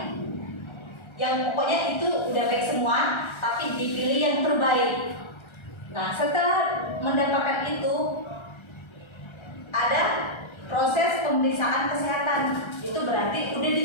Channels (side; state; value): right; late; 1.3 ms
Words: yang pokoknya itu udah baik semua, tapi dipilih yang terbaik. Nah, setelah mendapatkan itu ada proses pemeriksaan kesehatan. Itu berarti udah